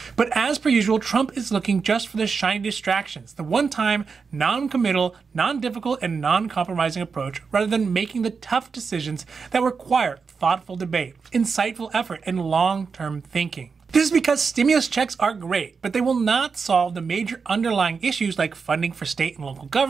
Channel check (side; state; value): left; quieter; 5.3 dB